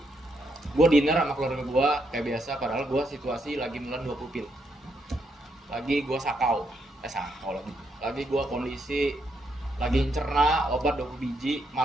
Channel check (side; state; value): both; normal; correlation 0.78